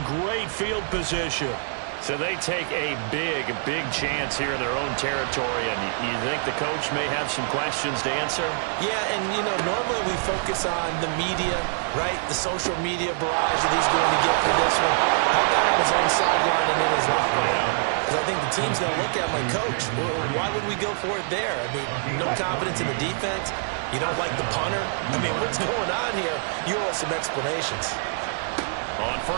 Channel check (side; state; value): left; silent; digital silence